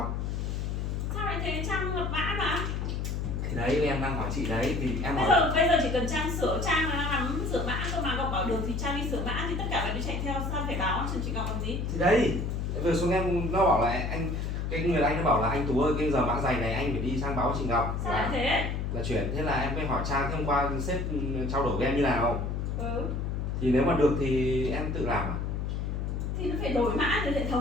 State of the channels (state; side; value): noise; left; hum, 2 dB below the sound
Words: Sao lại thế? Trang lập mã mà. Thì đấy em đang hỏi chị đấy, thì em hỏi Bây giờ chỉ cần Trang sửa, Trang là nắm sửa mã cơ mà. Ngọc bảo được thì Trang đi sửa mã, thì tất cả phải đi chạy theo, sao phải báo cho chị Ngọc làm gì? thì đấy vừa xuống em nó bảo là anh, cái người anh nó bảo là anh Tú ơi, cái giờ mã giày này anh phải đi sang báo chị Ngọc Sao lại thế? là chuyển. Thế là em mới hỏi Trang, thế hôm qua sếp trao đổi với em như nào, Ừ. thì nếu mà được thì em tự làm à? Thì nó phải đổi mã từ hệ